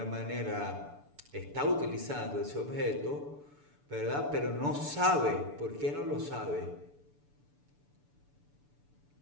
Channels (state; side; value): late; left; 6.9 ms